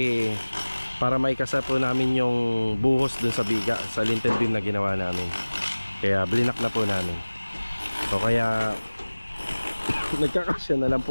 para maikasa po namin yung buhos doon sa biga, sa lintel beam na ginawa namin. Kaya blinak na po namin. So kaya Nagkakasya na lang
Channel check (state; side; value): inverted; both; correlation -1.00